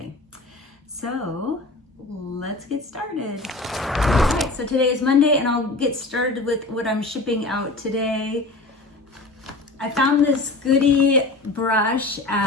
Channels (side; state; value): right; quieter; 3.1 dB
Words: So let's get started. All right, so today is Monday and I'll get started with what I'm shipping out today. I found this goodie brush